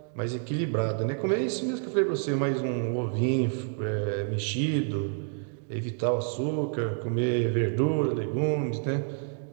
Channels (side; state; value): left; silent; 59 dB below the other